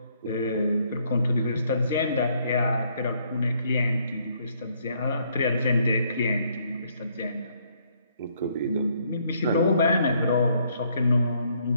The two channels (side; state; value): both; inverted; correlation -0.69